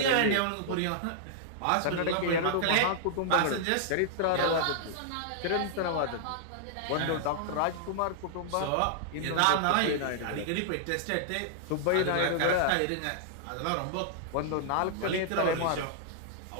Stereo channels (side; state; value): both; different; correlation -0.01